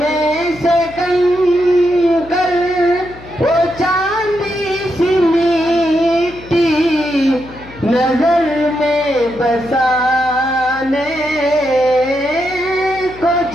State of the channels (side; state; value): left; noise; hum, 19 dB below the sound